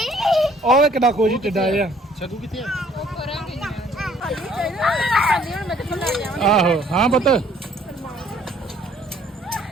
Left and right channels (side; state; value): both; normal; correlation 0.59